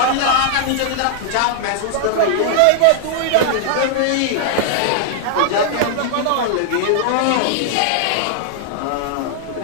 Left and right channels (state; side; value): different; both; correlation -0.01